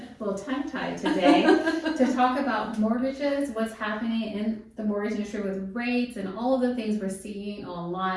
a little tongue-tied today, to talk about mortgages, what's happening in the mortgage industry with rates and all of the things we're seeing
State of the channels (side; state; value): both; identical; correlation 1.00